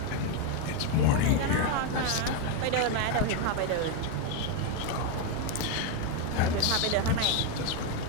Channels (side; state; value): both; different; correlation 0.01